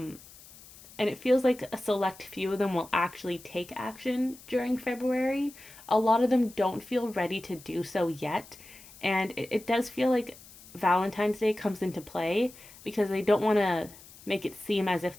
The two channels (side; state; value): left; noise; hiss, 21 dB below the sound